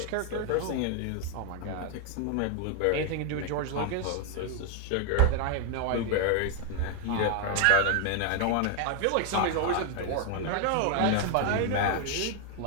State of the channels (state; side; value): different; both; correlation 0.00